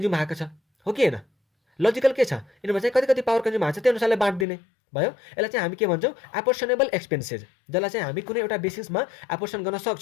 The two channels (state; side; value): drops out; right; at 4.5 s